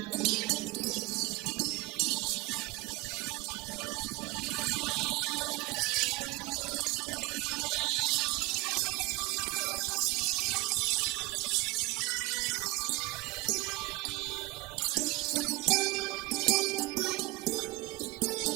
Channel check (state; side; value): quieter; left; 23.2 dB